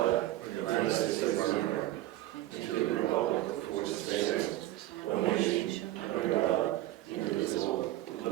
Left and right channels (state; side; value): quieter; left; 15.4 dB